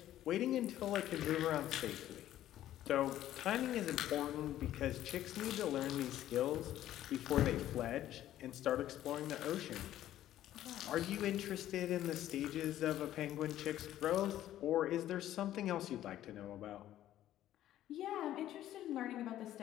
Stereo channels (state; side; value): quieter; right; 12.9 dB